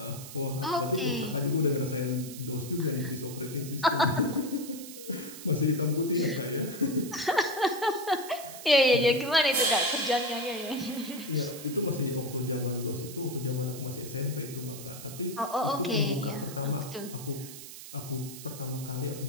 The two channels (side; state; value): right; noise; hiss, 13 dB below the sound